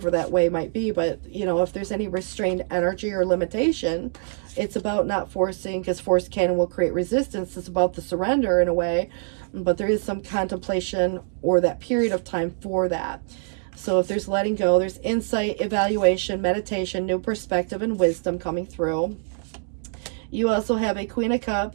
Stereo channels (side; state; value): left; silent; digital silence